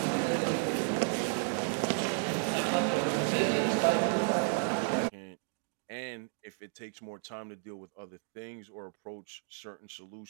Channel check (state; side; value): silent; left; 56 dB below the other